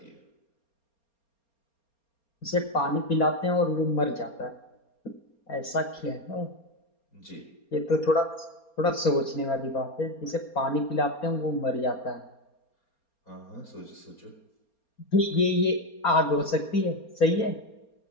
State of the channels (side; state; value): right; late; 4.3 ms